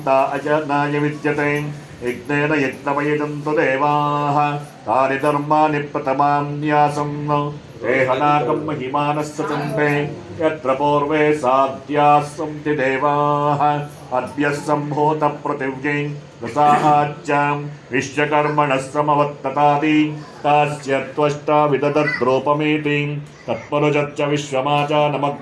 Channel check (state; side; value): identical; both; correlation 1.00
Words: अजनाय विद्यते यज्ञेन यज्ञमयजन्तु देवाः तानि धर्माणि प्रथमान्यासं देहनाकं महिमानः सचन्ते यत्र पूर्वे साध्याः सन्ति देवाः अद्य सम्भूतपृथिव्यै रसाच्चां विश्वकर्मणः समवत्ततादि तस्य त्वष्टा विदधद्रूपमेति तत्पुरुषश्च